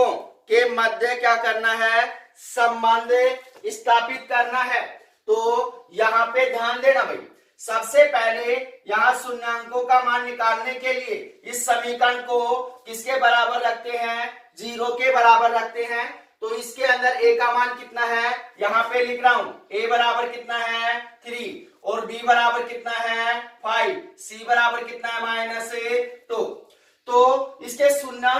के मध्य क्या करना है संबंध स्थापित करना है। तो यहाँ पे ध्यान देना भाई, सबसे पहले यहाँ शून्यांकों का मान निकालने के लिए इस समीकरण को किसके बराबर रखते हैं 0 के बराबर रखते हैं। तो इसके अंदर a का मान कितना है यहाँ पे लिख रहा हूं, a बराबर कितना है 3 और b बराबर कितना है 5, c बराबर कितना है -2। तो इसके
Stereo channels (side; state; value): both; identical; correlation 1.00